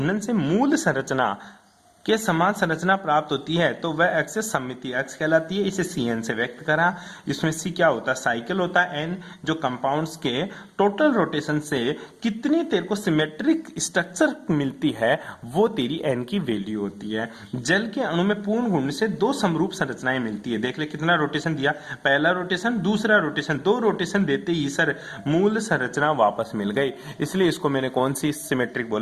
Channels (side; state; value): both; identical; correlation 1.00